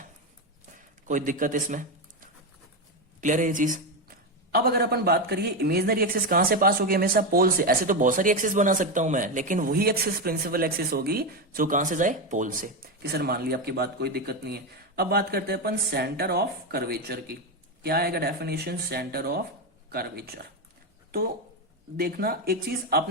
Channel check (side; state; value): both; normal; correlation 0.11